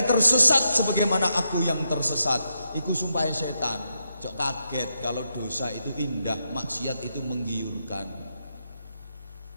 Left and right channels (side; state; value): both; inverted; correlation -0.83